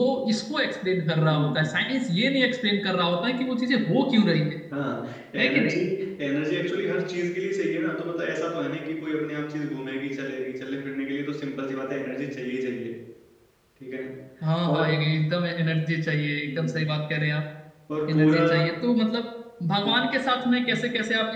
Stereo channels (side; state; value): both; identical; correlation 1.00